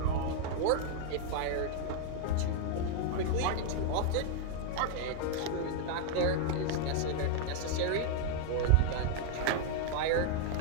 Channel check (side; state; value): both; different; correlation 0.00